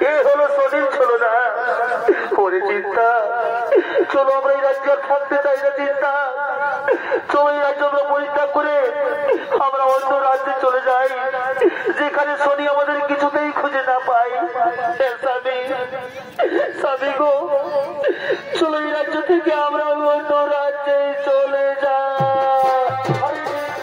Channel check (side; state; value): both; identical; correlation 1.00